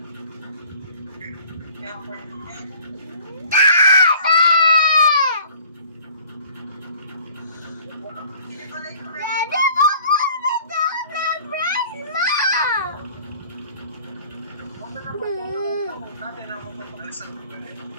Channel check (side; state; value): both; inverted; correlation -0.52